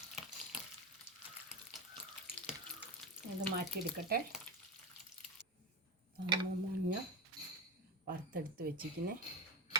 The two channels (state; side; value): normal; both; correlation 0.18